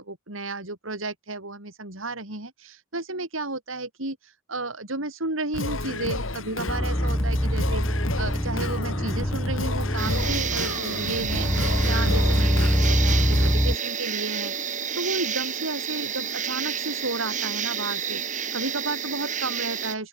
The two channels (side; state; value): both; normal; correlation 0.49